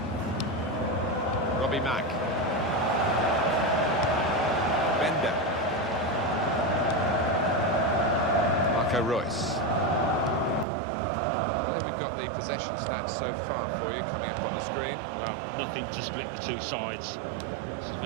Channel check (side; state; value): left; drops out; at 10.7 s